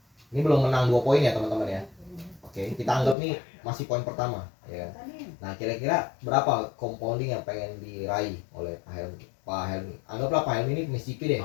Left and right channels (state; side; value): drops out; right; at 3.2 s